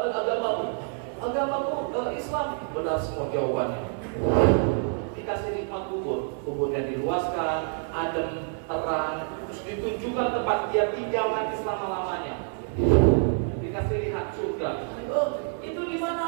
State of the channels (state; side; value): silent; left; 56 dB below the other